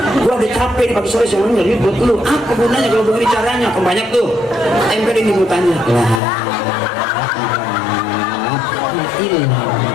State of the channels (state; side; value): drops out; right; at 6.2 s